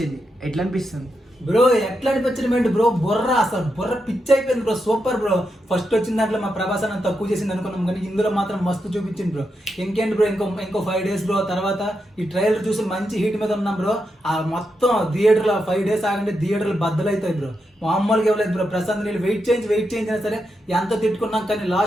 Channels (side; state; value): both; normal; correlation 0.85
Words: ఎట్లా అనిపిస్తుంది బ్రో? ఎట్లా అనిపించడం బ్రో, బుర్ర అసలు బుర్ర పిచ్చి అయిపోయింది బ్రో. Super bro. ఫస్ట్ వచ్చిన దాంట్లో మా ప్రభాస్ అన్న తక్కువ చేసింది అనుకున్నాం, కానీ ఇందులో మాత్రం మస్తు చూపించింది బ్రో. ఇంకేంటి బ్రో, ఇంకో 5 days బ్రో. తర్వాత ఈ ట్రైలర్ చూసి మంచి హీట్ మీద ఉన్నాం బ్రో. ఆ మొత్తం థియేటర్లో 5 days ఆగంటే థియేటర్లు బద్దలవుతాయి బ్రో. మామూలుగా ఇవ్వలేదు బ్రో. ప్రశాంత్ నీళ్ళు వెయిట్ చేయించినా సరే ఎంత తిట్టుకున్నాం, కానీ